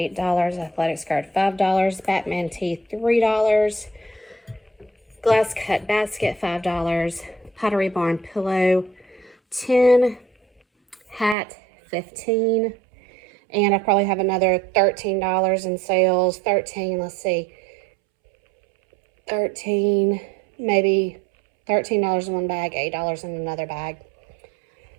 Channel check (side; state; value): left; drops out; at 11.4 s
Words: Athletic skirt, $5. Batman tee, $3. Glass cut basket, $5. Pottery Barn pillow, $10. Hat, $15. And I probably have another $13 in sales. 13, let's see. 13, maybe $13 in one bag, $8 in another bag.